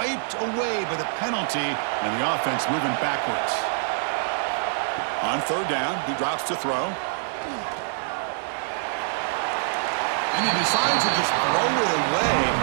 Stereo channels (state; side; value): silent; left; digital silence